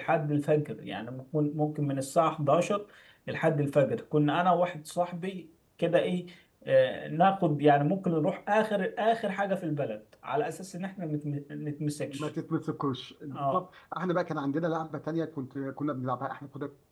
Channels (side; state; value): both; identical; correlation 1.00